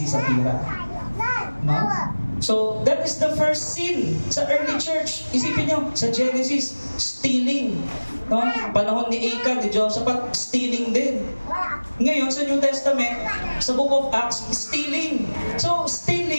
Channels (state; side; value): inverted; both; correlation -1.00